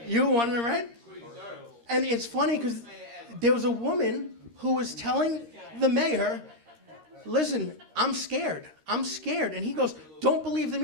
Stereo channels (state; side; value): late; left; 13 ms